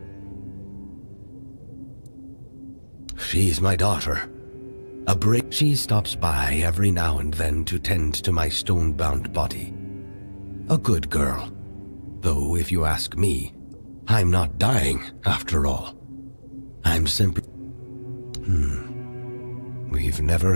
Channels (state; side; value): inverted; both; correlation -1.00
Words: She's my daughter. She stops by every now and then to tend to my stone-bound body. A good girl. Though, if you ask me, I'm not dying, after all. I'm simply... We've never